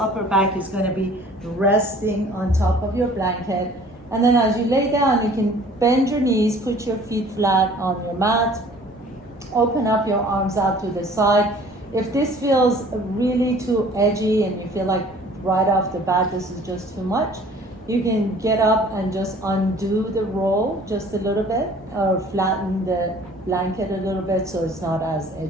back is going to be resting on top of your blanket. And then as you lay down, you can bend your knees, put your feet flat on your mat, open up your arms out to the side. If this feels really too edgy and you feel like right off the bat this is just too much, you can get up and just undo the roll just a little bit, or flatten the blanket a little bit so it's not as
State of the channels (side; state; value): both; normal; correlation 0.51